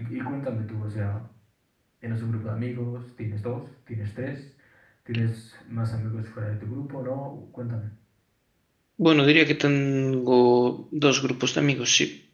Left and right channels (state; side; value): identical; both; correlation 1.00